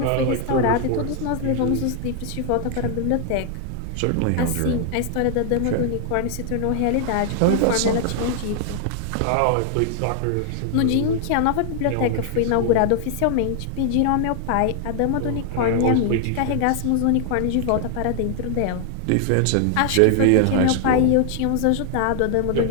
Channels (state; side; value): different; both; correlation 0.00